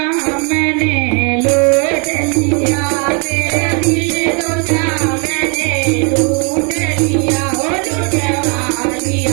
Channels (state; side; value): quieter; left; 35.3 dB